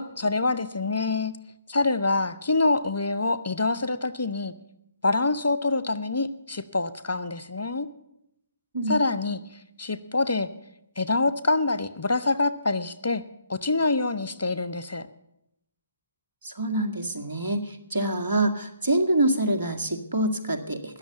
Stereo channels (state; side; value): inverted; both; correlation -0.69